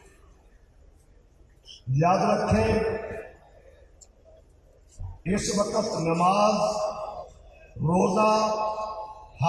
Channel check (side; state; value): both; identical; correlation 1.00